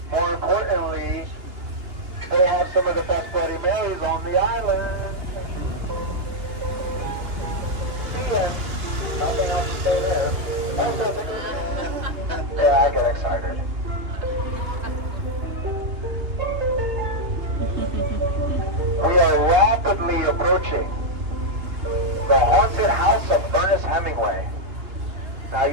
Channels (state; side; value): late; left; 2.9 ms